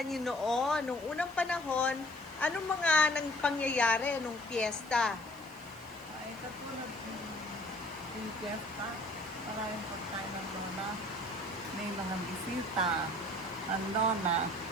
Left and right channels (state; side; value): noise; right; hiss, 24 dB below the sound